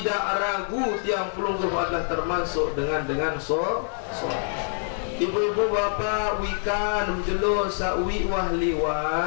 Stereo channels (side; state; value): right; silent; 61 dB below the other